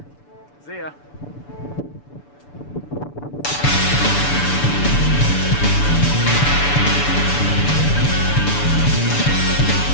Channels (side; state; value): right; late; 6.9 ms